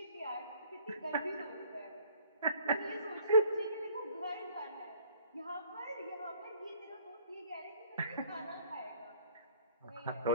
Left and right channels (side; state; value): both; inverted; correlation -0.56